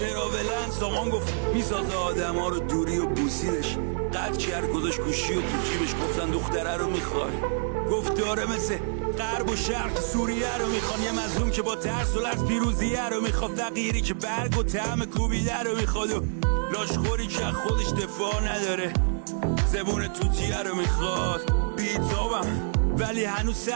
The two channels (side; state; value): left; silent; 60 dB below the other